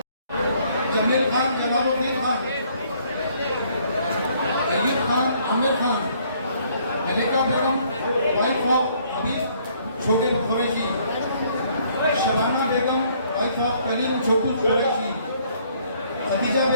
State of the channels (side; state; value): both; inverted; correlation -0.64